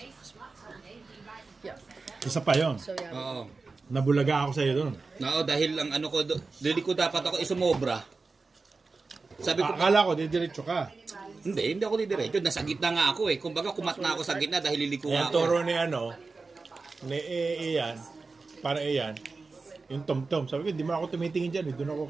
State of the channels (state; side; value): quieter; left; 4.0 dB